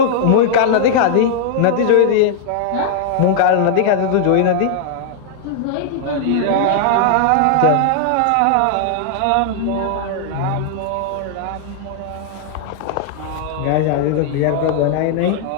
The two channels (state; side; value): different; both; correlation -0.01